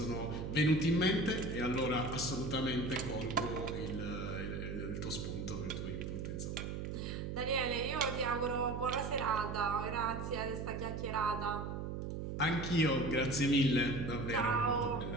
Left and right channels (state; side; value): noise; right; hum, 4 dB below the sound